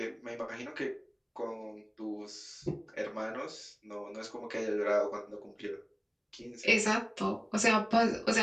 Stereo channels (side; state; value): both; identical; correlation 1.00